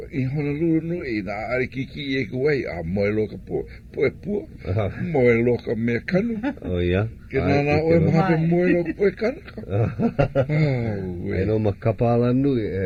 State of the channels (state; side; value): identical; both; correlation 1.00